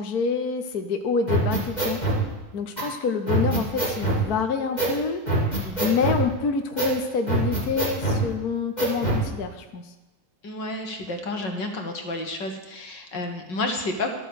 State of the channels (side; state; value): right; late; 2.0 ms